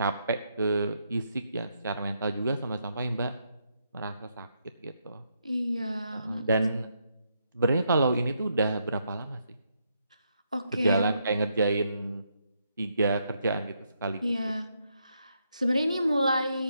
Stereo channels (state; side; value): inverted; both; correlation -0.78